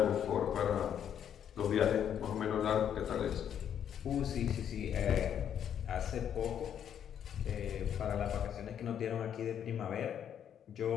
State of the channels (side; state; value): right; quieter; 9.1 dB